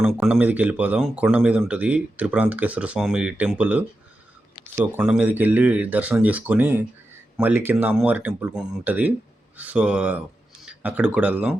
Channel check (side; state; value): both; normal; correlation 0.90